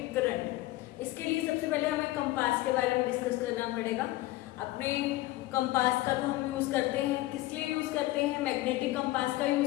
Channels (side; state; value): right; quieter; 17.7 dB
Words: current. इसके लिए सबसे पहले हमें कंपास के बारे में डिस्कस करना पड़ेगा. अपने कंपास का तो हम यूज करते हैं, किस लिए यूज करते हैं? मैग्नेटिक कंपास का